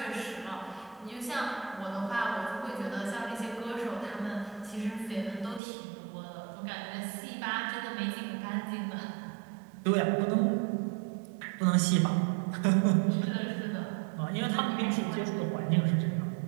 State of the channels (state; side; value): drops out; left; at 5.6 s